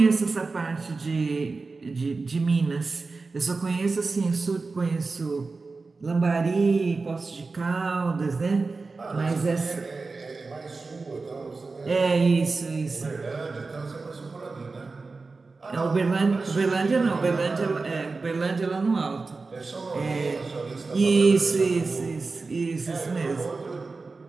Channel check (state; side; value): quieter; left; 4.0 dB